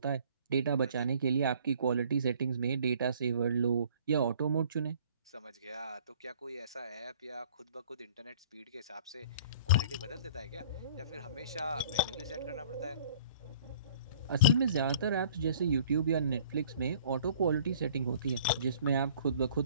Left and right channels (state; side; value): inverted; both; correlation -0.52